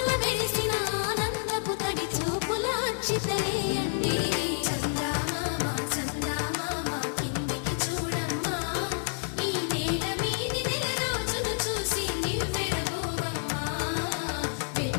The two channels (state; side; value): silent; right; 58 dB below the other